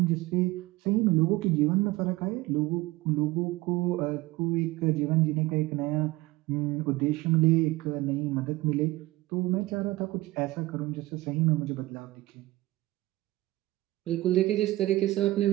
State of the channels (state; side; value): quieter; left; 19.0 dB